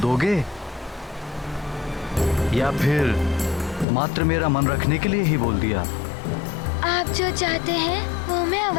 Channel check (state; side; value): drops out; right; at 3.9 s